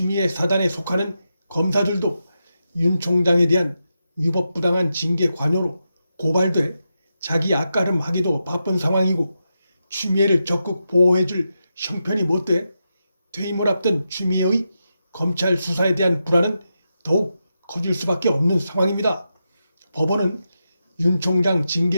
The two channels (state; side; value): inverted; both; correlation -0.87